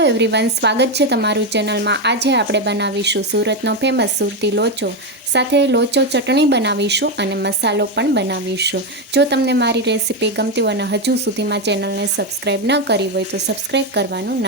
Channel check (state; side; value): normal; both; correlation 0.08